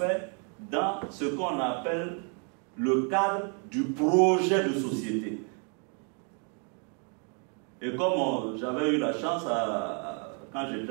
dans ce qu'on appelle le cadre du projet de société. Et comme j'avais eu la chance, quand j'étais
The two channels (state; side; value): quieter; left; 39.6 dB